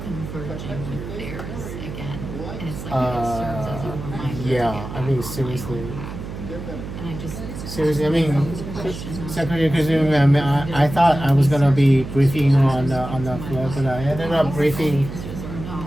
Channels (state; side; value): noise; right; hum, 9 dB below the sound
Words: Yeah, I mean, seriously. I mean, Secretary Kazumi, I thought I was gonna be briefing on the floor, but I ended up briefing